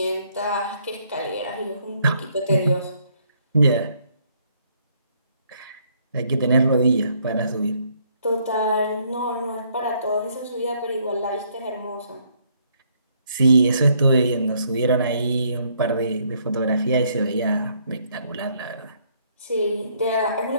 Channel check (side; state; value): both; inverted; correlation -0.68